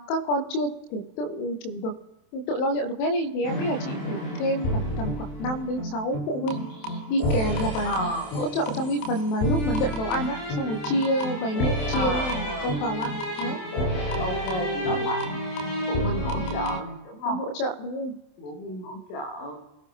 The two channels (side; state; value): right; late; 27 ms